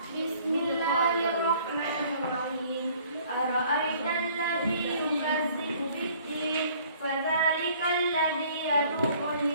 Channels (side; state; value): both; inverted; correlation -0.56